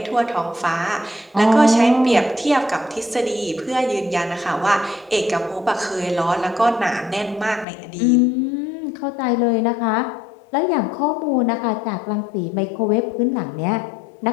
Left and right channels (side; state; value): right; drops out; at 7.7 s